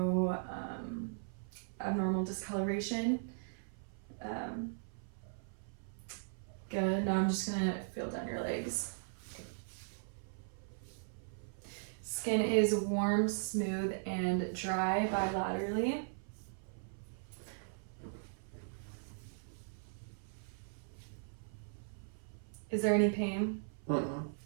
abnormal discoloration. Good. Now I'm just gonna feel down your legs. Skin is warm, smooth, and dry bilaterally. Is there any pain?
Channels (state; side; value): silent; left; 52 dB below the other